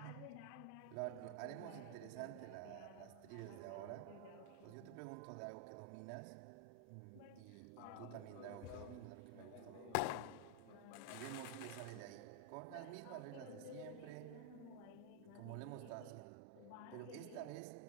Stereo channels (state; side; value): different; both; correlation 0.00